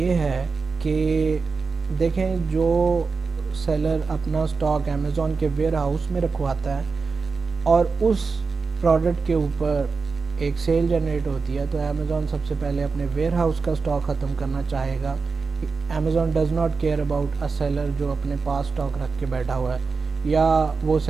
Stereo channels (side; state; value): left; quieter; 4.7 dB